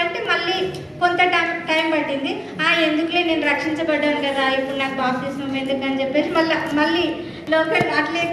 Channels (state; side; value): identical; both; correlation 1.00